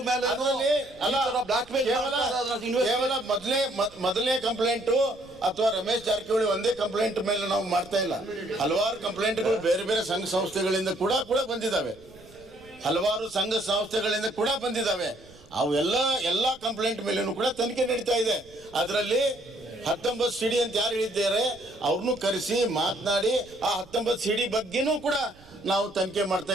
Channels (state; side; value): noise; right; rumble, 25 dB below the sound